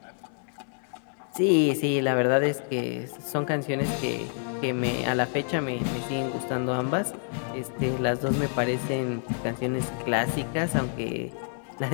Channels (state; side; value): silent; right; 60 dB below the other